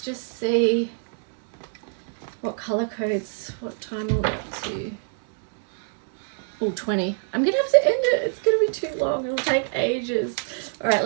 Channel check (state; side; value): silent; left; digital silence